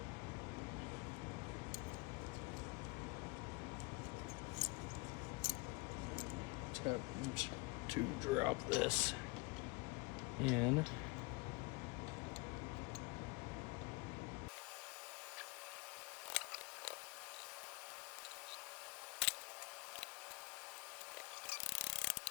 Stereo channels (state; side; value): quieter; right; 27.3 dB